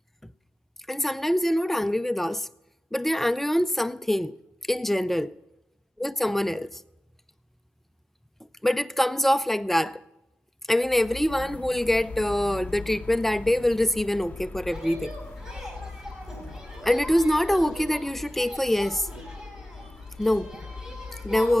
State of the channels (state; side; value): normal; both; correlation 0.96